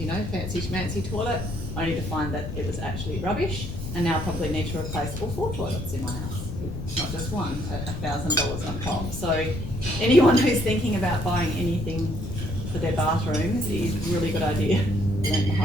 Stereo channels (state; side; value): noise; left; rumble, 7 dB below the sound